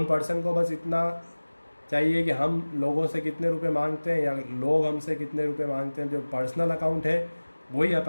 पर्सन को बस इतना चाहिए कि हम लोगों से कितने रुपए मांगते हैं या लोग हमसे कितने रुपए मांगते हैं, जो पर्सनल अकाउंट है वही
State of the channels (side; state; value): both; inverted; correlation -1.00